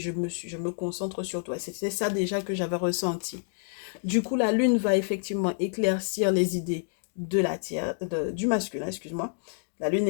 me concentre sur toi. C'était ça déjà que j'avais ressenti. Du coup, la lune va effectivement éclaircir les idées de du masculin, excuse-moi. La lune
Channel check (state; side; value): silent; right; digital silence